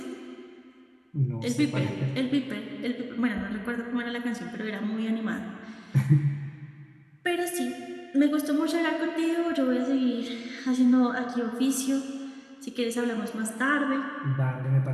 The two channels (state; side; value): identical; both; correlation 1.00